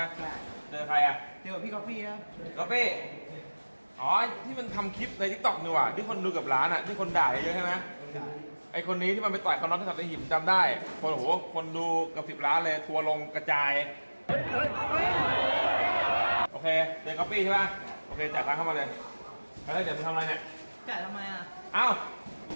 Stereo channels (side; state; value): both; inverted; correlation -1.00